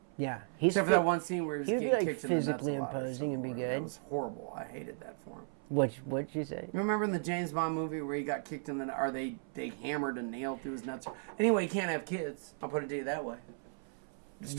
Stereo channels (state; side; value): silent; left; 54 dB below the other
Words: Yeah, Except for that one scene where he was he would be, getting like, kicked in the nuts a physically lot or imposing and be something. good. That was horrible. I hated that for him. What'd you say? You remember in the James Bond movie where he got kicked in the or they hammered a nail through his nuts? Anyway, he can't have kids. I'll put it to you that way.